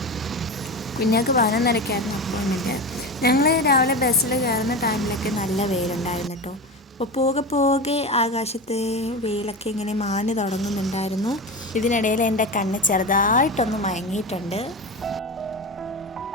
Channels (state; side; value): normal; both; correlation 0.24